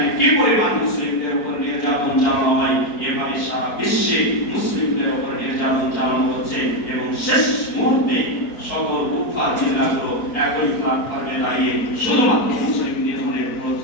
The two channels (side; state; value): right; late; 4.6 ms